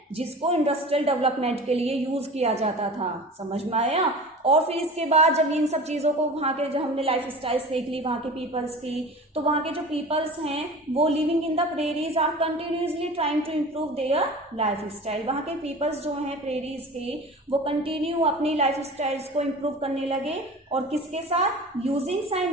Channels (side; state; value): both; normal; correlation 0.37